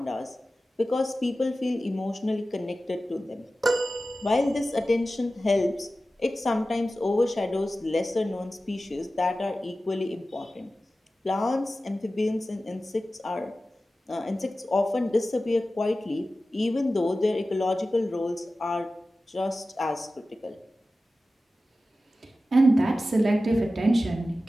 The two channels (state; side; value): normal; both; correlation 0.95